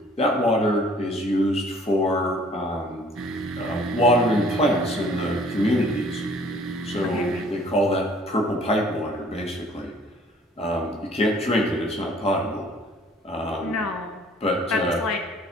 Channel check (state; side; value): normal; both; correlation 0.56